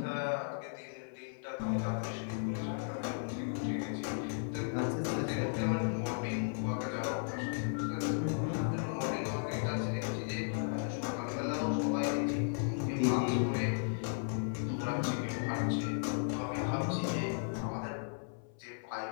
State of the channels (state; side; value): silent; right; 54 dB below the other